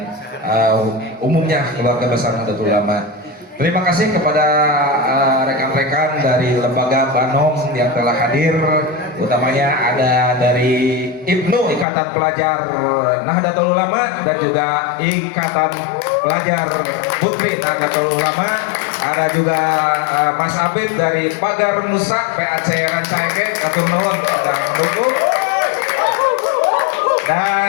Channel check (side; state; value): right; drops out; at 11.9 s